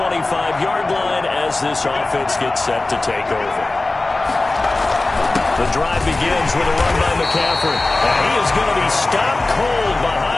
line as this offense gets set to take over. The drive begins with a run by McCaffrey. And he is going to be stopped cold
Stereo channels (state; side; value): quieter; right; 3.1 dB